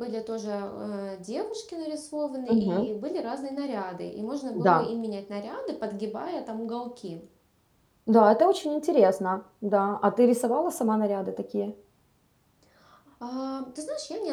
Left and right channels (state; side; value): identical; both; correlation 1.00